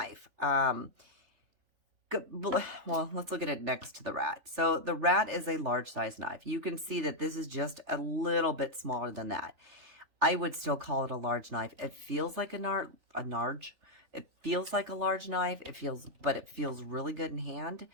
Well, let's look at it next to the rat. So the rat is a large size knife. You can see that this is just a little bit smaller than that. I would still call it a large knife. It feels like it feels like a large knife. But it feels really good in hand.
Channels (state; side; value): late; left; 3.3 ms